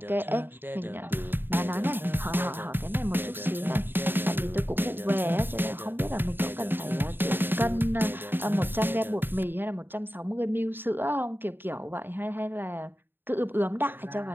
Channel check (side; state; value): left; late; 0.097 ms